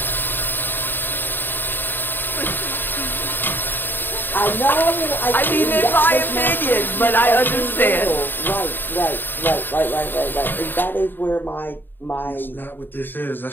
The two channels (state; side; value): late; right; 0.094 ms